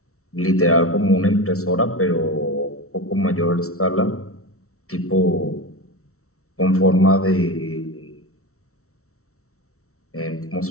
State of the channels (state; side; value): late; right; 0.63 ms